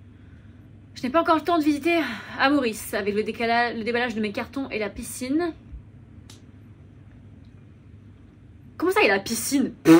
Je n'ai pas encore le temps de visiter à Maurice, avec le déballage de mes cartons et la piscine. Comment ça, il y a la piscine?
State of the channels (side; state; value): both; identical; correlation 1.00